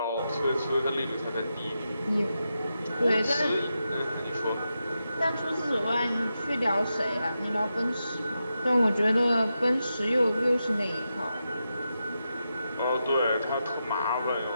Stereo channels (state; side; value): inverted; both; correlation -0.88